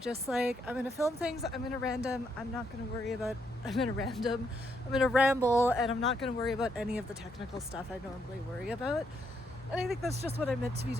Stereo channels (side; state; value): both; normal; correlation 0.76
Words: just like, I'm gonna film things, I'm gonna ramble, and I'm not gonna worry about any of the technical stuff I normally worry about. And I think that's just what I'm meant to be